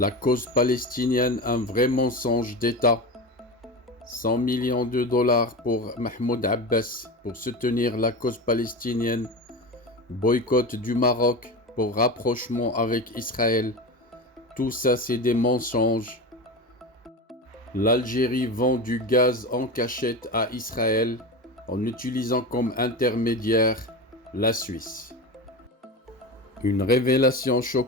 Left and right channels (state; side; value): normal; both; correlation 0.25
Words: cause palestinienne, un vrai mensonge d'État. 100 millions de dollars pour Mahmoud Abbas pour soutenir la cause palestinienne. Boycott du Maroc pour rapprochement avec Israël. Tout ça, c'est des mensonges. L'Algérie vend du gaz en cachette à Israël en utilisant comme intermédiaire la Suisse. Une révélation